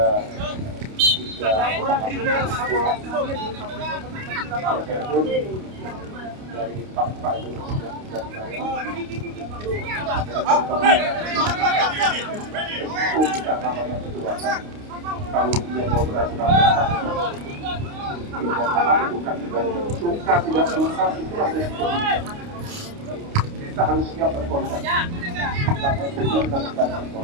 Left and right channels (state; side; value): late; left; 29 ms